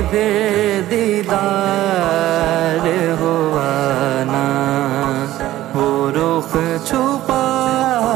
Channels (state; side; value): quieter; left; 14.8 dB